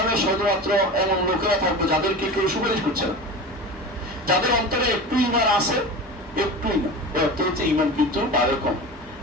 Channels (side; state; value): both; normal; correlation 0.31